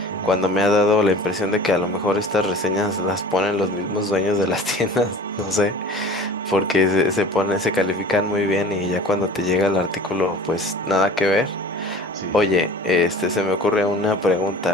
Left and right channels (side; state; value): both; normal; correlation 0.43